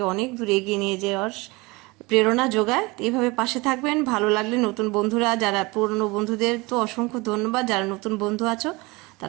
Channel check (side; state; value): left; quieter; 24.2 dB